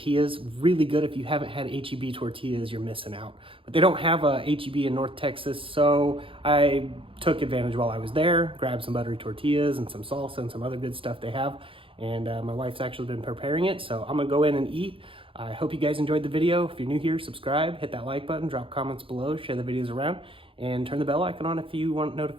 Really good. If you haven't had H-E-B tortillas, you're missing out. But they don't have a H-E-B in North Texas, so I took advantage while I was there, grabbed some buttery tortillas and some salsa and some other good stuff they have. And my wife's actually been preparing it, so I'm gonna go in and eat. I hope you guys enjoyed the video. If you're new here, subscribe, hit that like button, drop comments below, share the videos around, and turn the bell icon on if you want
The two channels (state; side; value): late; left; 0.26 ms